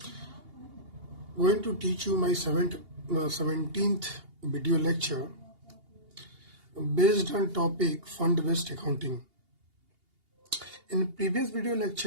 going to teach you my 17th video lecture based on topic fund-based accounting. In previous video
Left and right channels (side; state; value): left; late; 2.8 ms